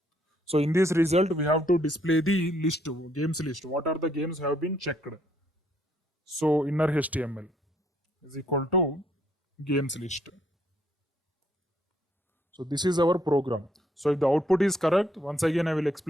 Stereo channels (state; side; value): normal; both; correlation 0.69